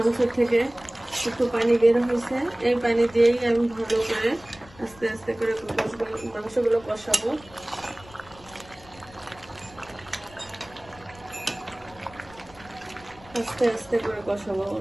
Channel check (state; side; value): noise; left; rumble, 23 dB below the sound